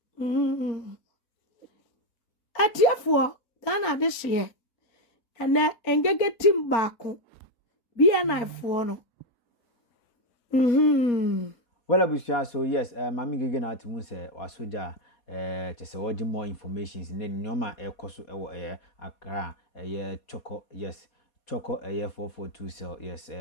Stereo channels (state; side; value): late; right; 4.3 ms